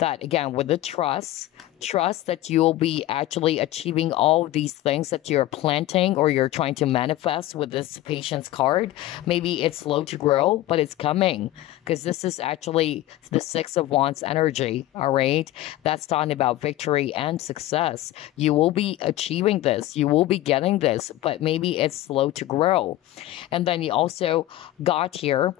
again, with the trust that you'll be actually achieving all of these things that you're planting or you're trying to manifest with this patience card. Maybe it's slow to grow, but it's coming, because this is actually the Six of Wands energy, all right? That's talking about victory and success. You will be achieving this. You will be getting this, but maybe it's slow to grow. And then you also got here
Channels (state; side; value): quieter; right; 15.2 dB